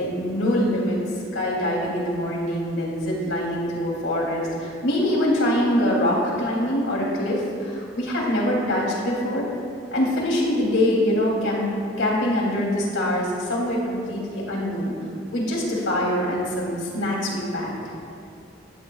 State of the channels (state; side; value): normal; both; correlation 0.44